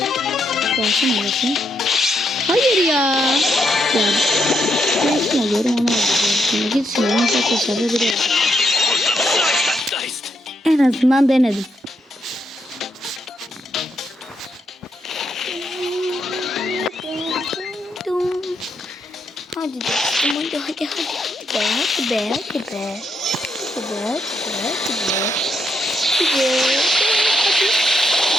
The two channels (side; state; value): both; normal; correlation 0.78